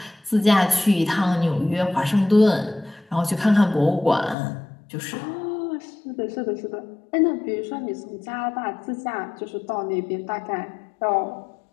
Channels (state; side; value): drops out; right; at 4.4 s